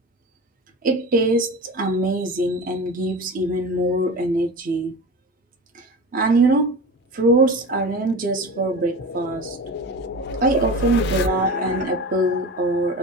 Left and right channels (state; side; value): normal; both; correlation 0.31